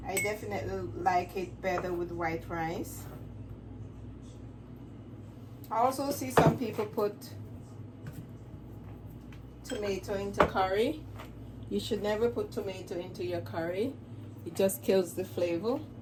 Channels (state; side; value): identical; both; correlation 1.00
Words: I definitely like it better with white rice. I also see some people put tomato into curry. You should never put tomato into your curry. It just kills the flavor.